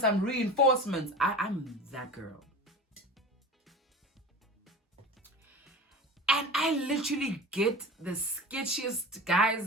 reinforcements. I'm that girl. And I literally get the sketchiest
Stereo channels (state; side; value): normal; both; correlation 0.34